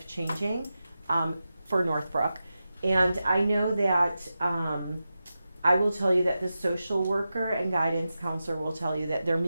for Northbrook. And I know that I will tell you that the social worker and guidance counselor will tell you that they're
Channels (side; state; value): both; inverted; correlation -0.91